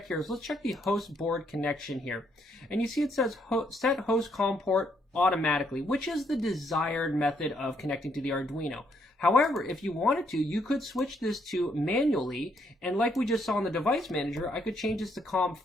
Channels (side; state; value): both; normal; correlation 0.73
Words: here is let's check the host board connection here. And you see it says set host COM port automatically, which is the desired method of connecting to the Arduino. However, if you wanted to, you could switch this to manually, and like we just saw in the device manager, I could change this to